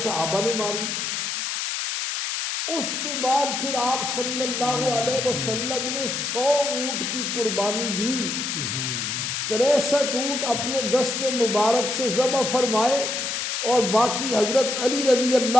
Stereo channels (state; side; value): noise; left; hiss, 2 dB below the sound